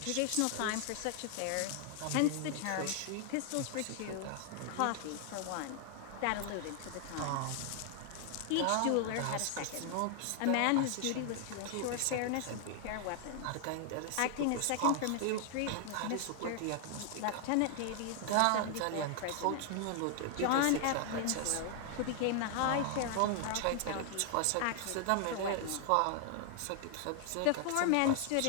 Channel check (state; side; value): different; both; correlation 0.00